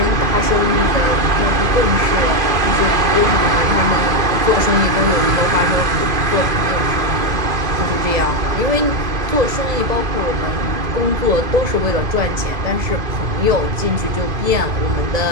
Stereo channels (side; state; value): left; late; 2.5 ms